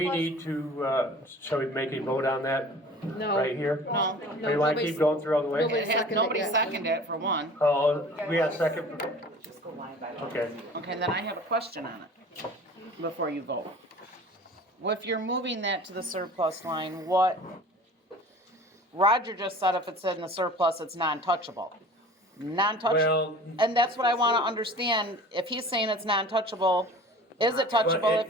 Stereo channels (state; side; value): normal; both; correlation 0.43